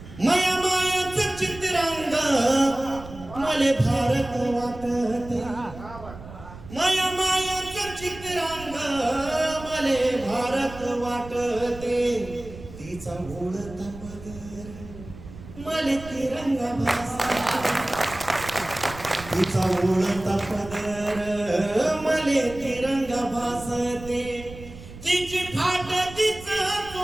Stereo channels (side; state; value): right; noise; rumble, 15 dB below the sound